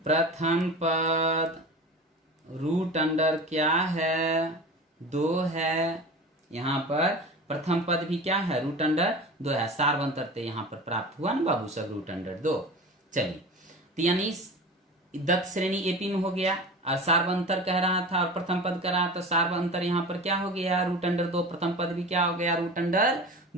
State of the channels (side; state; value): both; normal; correlation 0.33